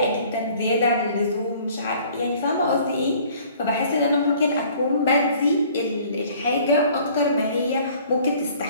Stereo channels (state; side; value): inverted; both; correlation -0.54